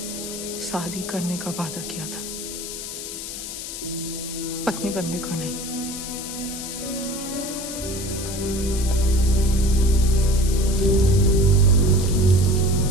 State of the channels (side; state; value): left; noise; hiss, 8 dB below the sound